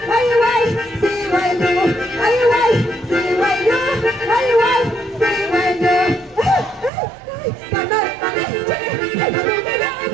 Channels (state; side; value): drops out; left; at 6.9 s